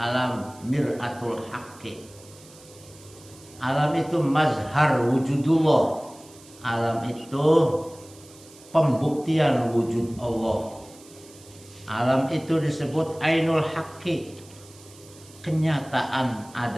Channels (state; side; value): noise; right; hiss, 23 dB below the sound